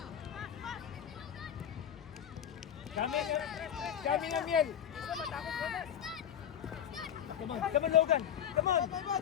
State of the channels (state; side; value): quieter; right; 9.4 dB